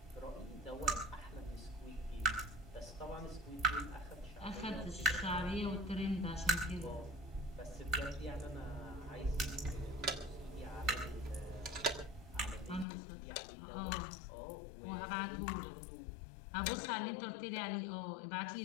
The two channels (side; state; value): right; drops out; at 12.9 s